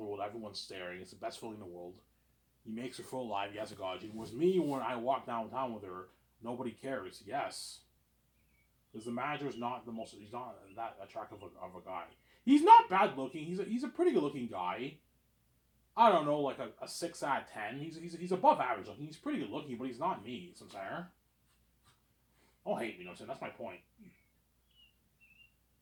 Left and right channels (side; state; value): both; identical; correlation 1.00